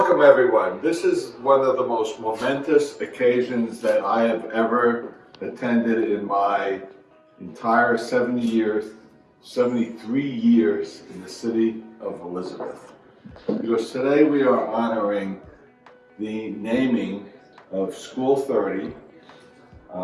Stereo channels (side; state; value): both; identical; correlation 1.00